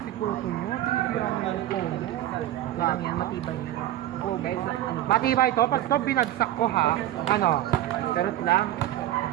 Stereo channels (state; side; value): quieter; left; 13.6 dB